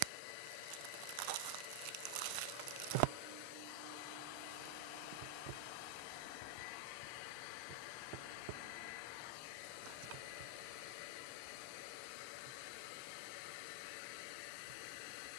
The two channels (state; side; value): different; both; correlation 0.00